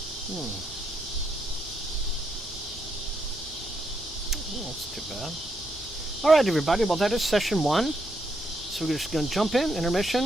Oh, that's too bad. All right, everybody. Well, that is session 1. So we're just going to jump in,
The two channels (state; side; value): normal; both; correlation 0.78